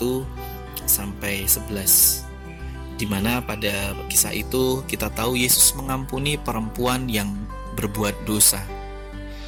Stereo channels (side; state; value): both; identical; correlation 1.00